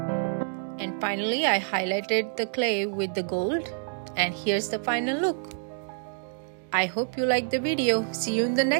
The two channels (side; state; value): left; silent; digital silence